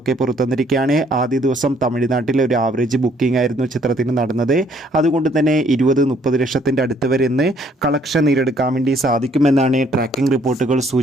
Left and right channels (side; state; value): both; normal; correlation 0.65